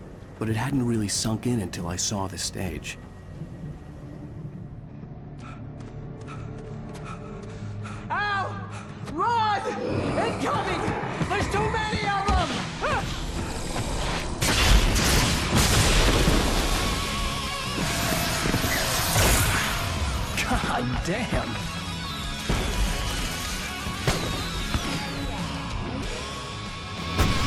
but it hadn't really sunk in until I saw the stage. Ow! Run! Incoming! There's too many of them! God damn!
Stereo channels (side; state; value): both; identical; correlation 1.00